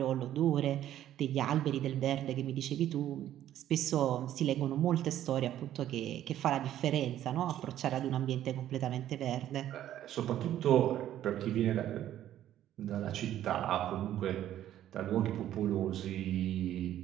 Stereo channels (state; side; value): quieter; left; 12.1 dB